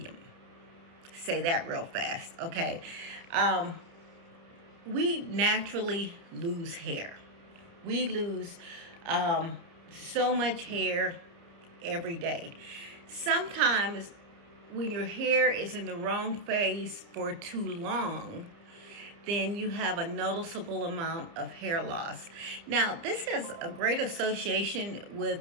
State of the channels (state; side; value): late; left; 30 ms